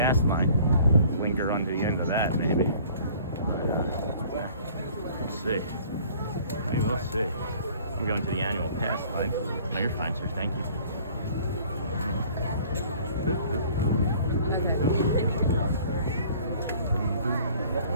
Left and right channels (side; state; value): both; inverted; correlation -0.52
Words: line. Link her onto the end of that, maybe. We'll see. Maybe we'll see. I'm going to the annual pass line. Oh, you're fine, sir. Thank you.